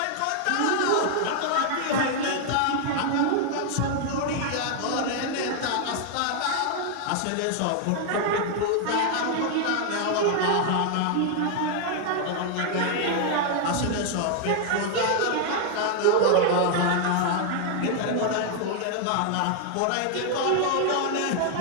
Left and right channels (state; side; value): different; both; correlation 0.00